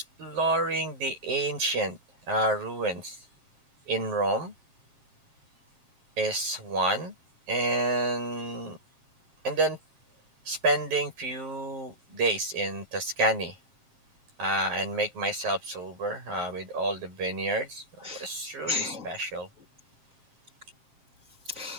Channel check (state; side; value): late; left; 7.5 ms